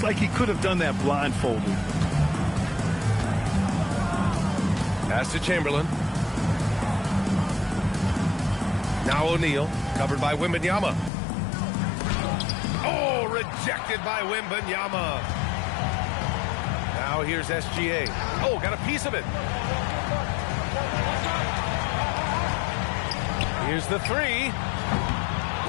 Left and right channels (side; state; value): right; drops out; at 11.1 s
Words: like he could have done that blindfolded. Pass to Chamberlain. Now O'Neal, covered by Wembanyama. Oh, rejected by Wembanyama. Now here's SGA. Oh, got a piece of it. Here's the 3.